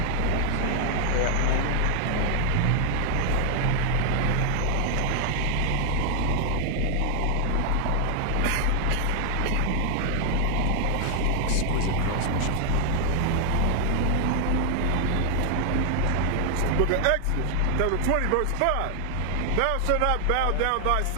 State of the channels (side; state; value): both; different; correlation 0.00